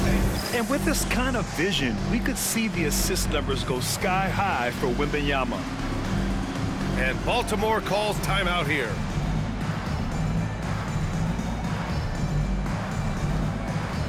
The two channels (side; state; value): both; identical; correlation 1.00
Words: And with this kind of vision, we could see the assist numbers go sky high for Wembanyama. And Baltimore calls timeout here.